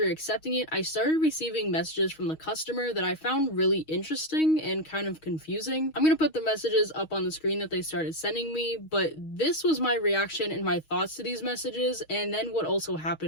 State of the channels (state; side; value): late; right; 6.3 ms